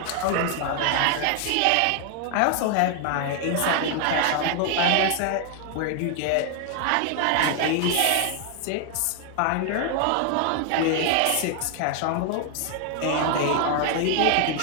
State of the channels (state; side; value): different; both; correlation 0.00